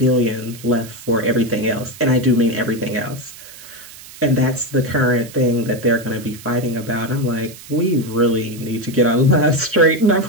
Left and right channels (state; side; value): noise; right; hiss, 17 dB below the sound